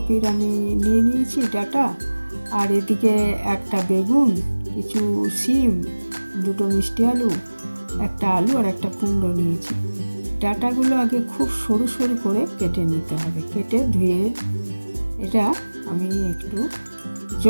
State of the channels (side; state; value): both; inverted; correlation -1.00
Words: আমি নিয়ে নিয়েছি ডাঁটা, আর এদিকে একটা বেগুন, কিছু শিম, দুটো মিষ্টি আলু, একটা আলু আর একটা কুমড়ো নিয়েছি। ডাঁটাগুলো আগে খুব সরু সরু করে কেটে নিতে হবে। কেটে ধুয়ে এটা আমি একটু